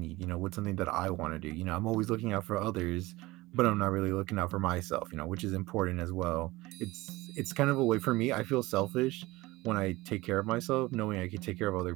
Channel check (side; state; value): left; quieter; 20.1 dB